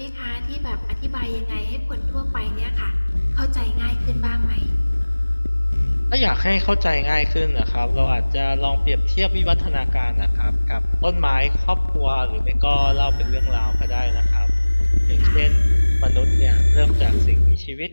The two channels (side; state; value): both; inverted; correlation -1.00